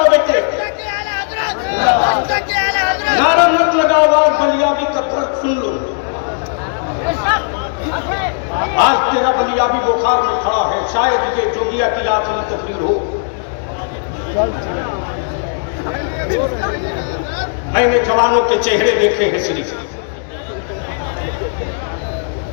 बेटे, नारा मत लगाओ, आवाज बलियाबी का दर्द सुन लो। आज तेरा बलियाबी बुखार में खड़ा है, शायद ये जोगिया की आखिरी तकरीर हो। मैंने जवानों के चेहरे देखे हैं श्री,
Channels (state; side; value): silent; right; digital silence